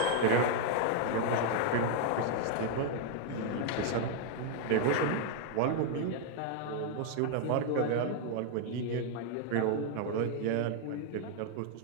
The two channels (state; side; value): different; both; correlation 0.00